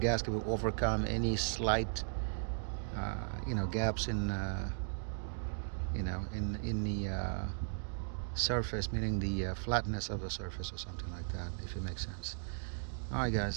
will overcome any slight you know, gaps in you know, in the surface, meaning the flatness of the surface or something like that, if it makes sense. All right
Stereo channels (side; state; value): left; silent; digital silence